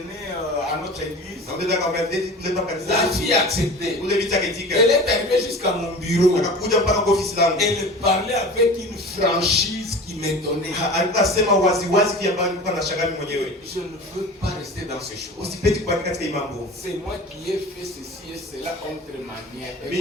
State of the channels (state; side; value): normal; both; correlation 0.37